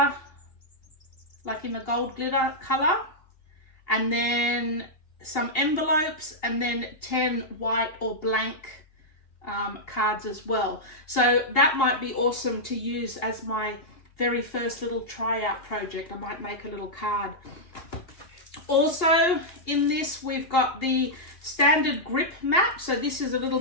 like in the gold glitter color, and then some envelopes, and then 10 white or blank cards as well. So that might be awesome to use as my very first little tryout project. I might make a little card. Also in this we've got the standard grip mat. So this is a little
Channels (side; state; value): right; late; 2.8 ms